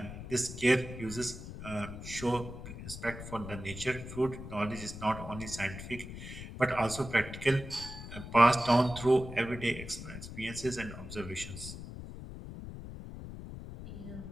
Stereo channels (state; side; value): noise; left; rumble, 10 dB below the sound